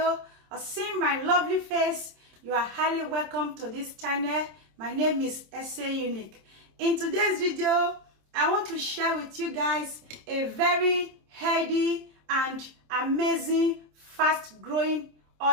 or seeing my lovely face, you are highly welcome to this channel. My name is Ese Unique. In today's video, I want to share with you guys a very healthy and amazing fast growing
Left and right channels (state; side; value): late; left; 27 ms